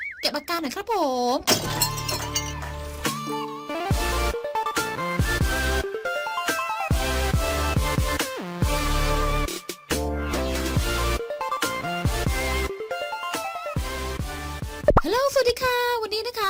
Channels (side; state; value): both; identical; correlation 1.00